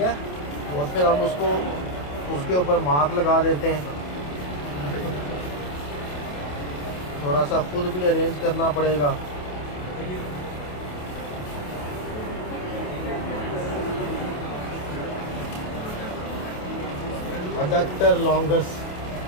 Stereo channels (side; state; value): right; late; 28 ms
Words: और फिर हम उसको उसके ऊपर मार्क लगा देते हैं। थोड़ा सा खुद भी अरेंज करना पड़ेगा। अडक्टर लॉन्गस